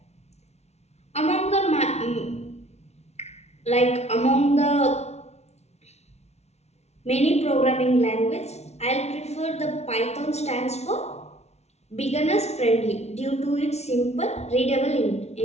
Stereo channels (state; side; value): late; right; 0.31 ms